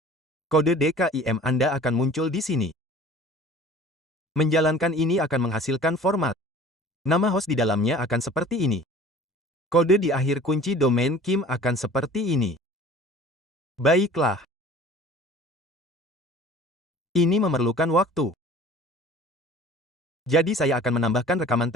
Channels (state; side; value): normal; both; correlation 0.46